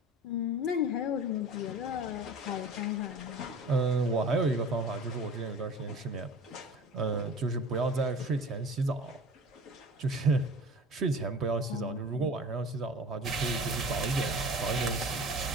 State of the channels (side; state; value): both; normal; correlation 0.40